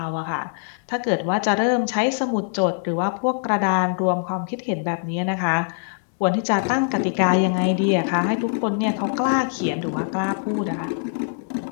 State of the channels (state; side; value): silent; right; 64 dB below the other